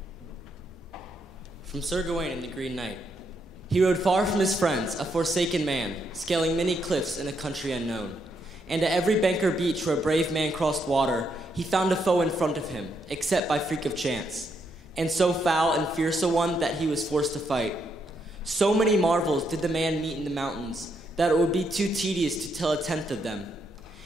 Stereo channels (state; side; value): normal; both; correlation 0.77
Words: From Sir Gawain and the Green Knight. He rode far from his friends, a forsaken man, scaling many cliffs in a country unknown. And at every bank or beach where a brave man crossed water, he found a foe in front of him, except by freak of chance, and so foul and fierce a one that he was forced to fight. So many marvels did the man meet in the mountains, that it would be too tedious to tell a tenth of them.